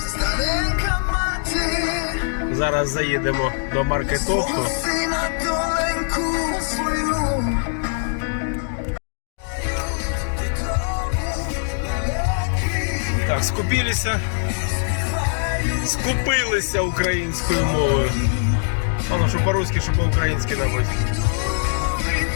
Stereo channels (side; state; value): right; silent; digital silence